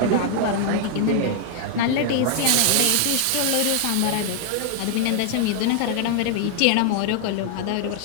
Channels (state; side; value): different; both; correlation 0.00